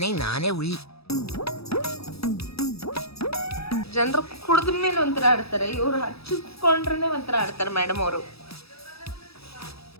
ನಾನೇ ಹುಲಿ. ಜನರು ಕುಡಿದ ಮೇಲೆ ಒಂಥರ ಆಡ್ತಾರೆ, ಇವ್ರು ಹಚ್ಚಿಕೊಂಡ್ರೆ ಒಂಥರ ಆಡ್ತಾರೆ ಮೇಡಮ್ ಅವರು.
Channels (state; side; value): late; right; 0.77 ms